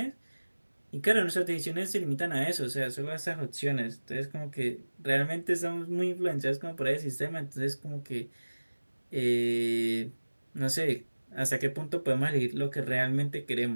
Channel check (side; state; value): both; inverted; correlation -1.00